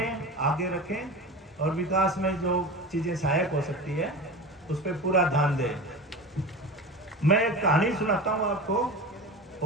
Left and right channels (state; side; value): normal; both; correlation 0.30